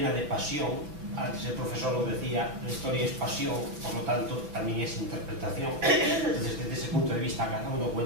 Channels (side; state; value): left; late; 5.9 ms